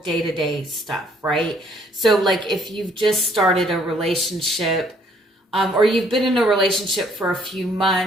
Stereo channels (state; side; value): normal; both; correlation 0.64